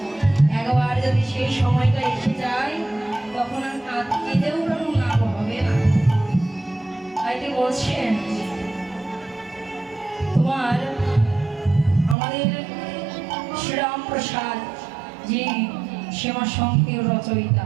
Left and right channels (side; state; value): left; drops out; at 12.2 s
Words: একবার যদি সেই সময়টা এসে যায় তখন আর কাঁদতেও কোনো লাভ হবে না। তাইতে বলছেন তোমার আমাদের শ্রীরাম প্রসাদ যিনি শ্যামা সংকের রচয়িতা,